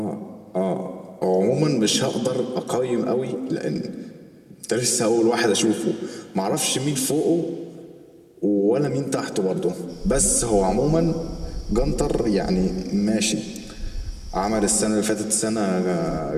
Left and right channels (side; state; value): both; identical; correlation 1.00